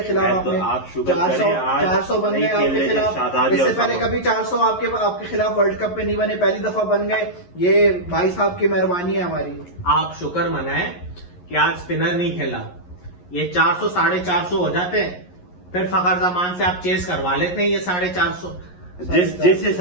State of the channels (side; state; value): right; late; 11 ms